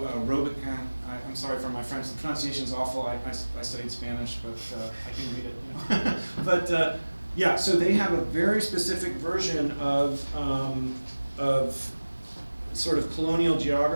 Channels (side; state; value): both; inverted; correlation -1.00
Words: Robequin. I'm sorry for my French, the pronunciation's awful. I studied Spanish, but I can read it, But yeah, so they have a very specific version of sort of colonial